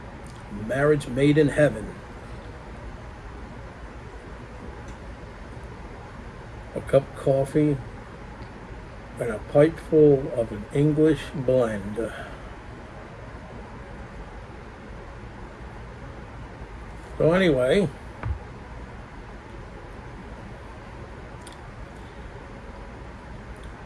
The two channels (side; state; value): both; identical; correlation 1.00